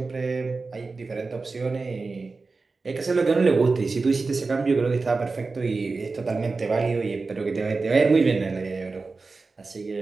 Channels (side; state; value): left; quieter; 4.0 dB